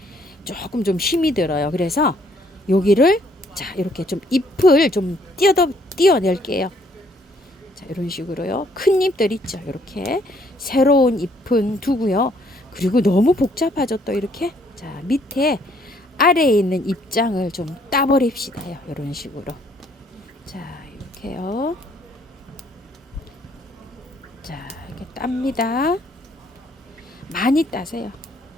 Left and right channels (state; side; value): normal; both; correlation 0.65